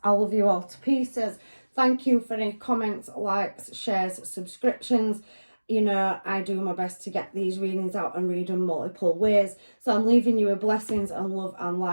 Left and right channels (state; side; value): inverted; both; correlation -1.00